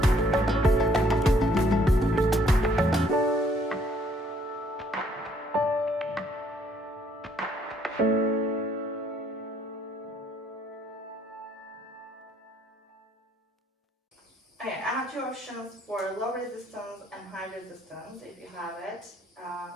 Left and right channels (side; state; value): both; normal; correlation 0.65